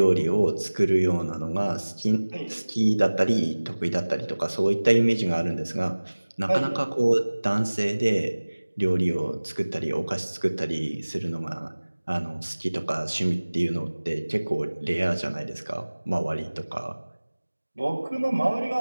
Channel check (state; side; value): inverted; both; correlation -1.00